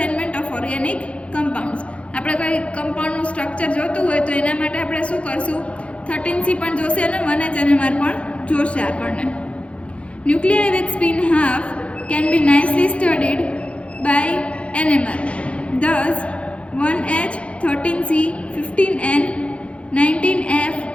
of organic compounds. આપણે કોઈ કમ્પાઉન્ડનું સ્ટ્રક્ચર જોતું હોય તો એના માટે આપણે શું કરશું, 13C પણ જોશે અને 1H NMR પણ જોશે આપણને. Nuclei with spin half can be nicely studied by NMR. Thus, 1H, 13C, 15N, 19F,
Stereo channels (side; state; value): right; late; 0.061 ms